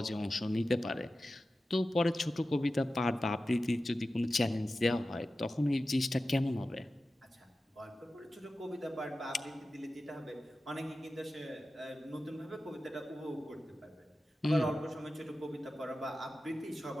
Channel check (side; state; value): both; normal; correlation 0.94